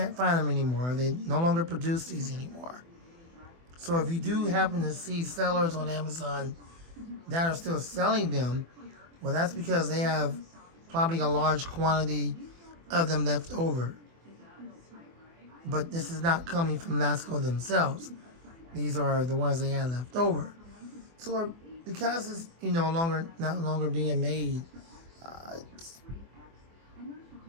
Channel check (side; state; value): left; late; 24 ms